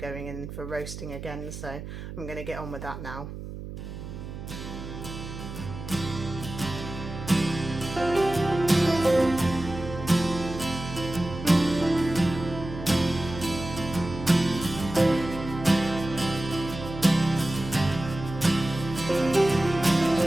in for roasting again, so I'm going to get on with that now.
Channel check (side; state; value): right; noise; hum, 10 dB below the sound